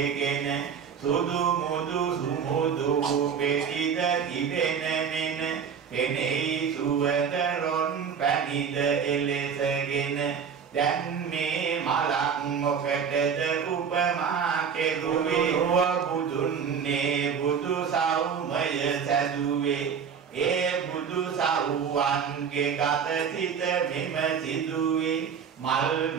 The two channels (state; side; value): quieter; left; 6.9 dB